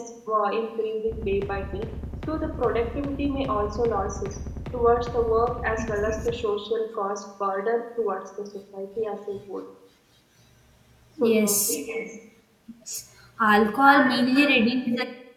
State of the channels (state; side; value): identical; both; correlation 1.00